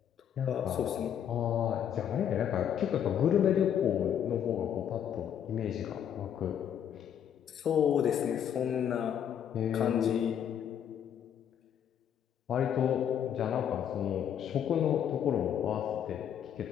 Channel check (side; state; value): right; quieter; 9.2 dB